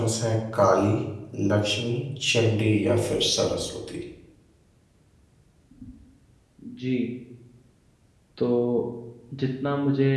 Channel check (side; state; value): both; identical; correlation 1.00